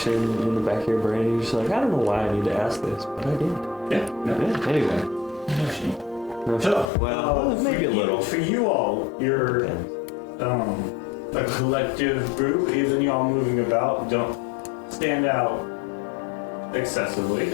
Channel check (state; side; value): drops out; right; at 6.9 s